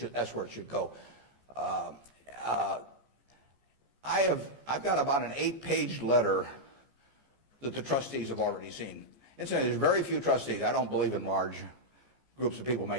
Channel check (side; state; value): left; late; 14 ms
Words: that's where it should go. I've got about an 8-page letter that the trustees have already seen. Incidentally, there's very few trustees. I don't believe in large groups of people